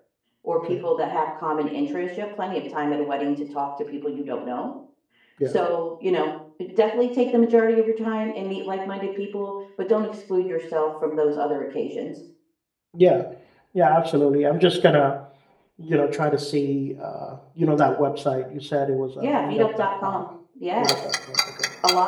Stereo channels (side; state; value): both; identical; correlation 1.00